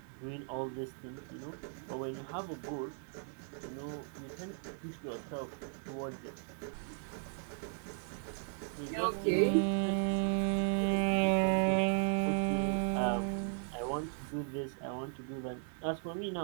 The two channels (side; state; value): left; silent; 53 dB below the other